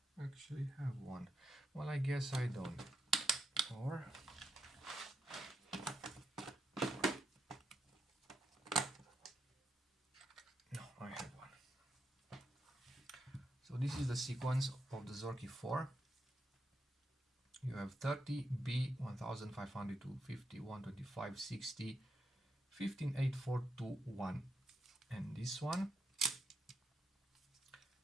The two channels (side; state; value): both; normal; correlation 0.81